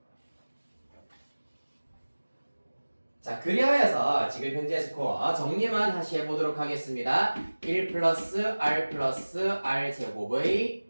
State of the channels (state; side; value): inverted; both; correlation -1.00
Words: 자, 그리하여서 지금 현재 스코어 정리만 다시 해보도록 하겠습니다. 1 플러스 R 제곱의